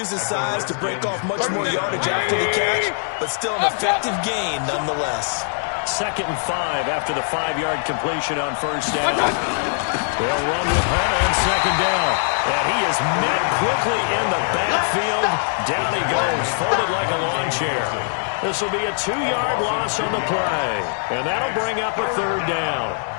his size to break off much more yardage after the catch, but still an effective gain nonetheless. 2nd and 5 after the 5-yard completion on first down. They'll run with Hunt on second down. And he is met quickly in the backfield. Down he goes, folded like a lawn chair. This will be a 2-yard loss on the play, and that'll bring up a 3rd down.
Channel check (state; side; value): silent; right; digital silence